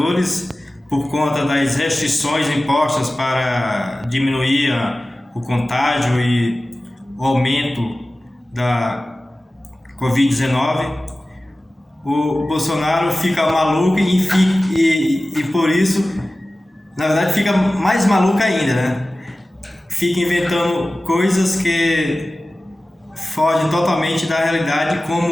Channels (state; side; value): normal; both; correlation 0.96